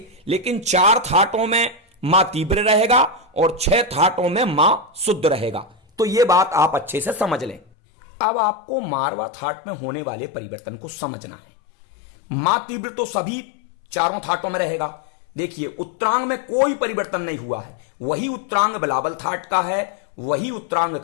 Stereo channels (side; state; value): right; drops out; at 7.7 s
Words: लेकिन 4 थाटों में मां तीव्र रहेगा और 6 थाटों में मां शुद्ध रहेगा। तो ये बात आप अच्छे से समझ लें। अब आपको मारवा थाट में होने वाले परिवर्तन को समझना है। मां तीव्र तो सभी चारों थाटों में रहेगा। देखिए, उत्तरांग में कोई परिवर्तन नहीं हुआ है, वही उत्तरांग बिलावल थाट का है, वही उत्तरांग